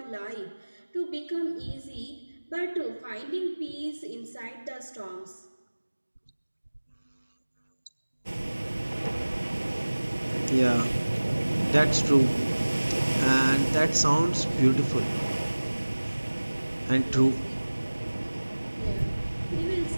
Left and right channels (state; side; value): inverted; both; correlation -1.00